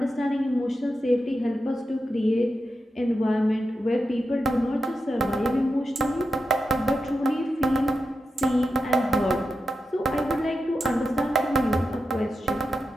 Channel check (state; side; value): normal; both; correlation 0.89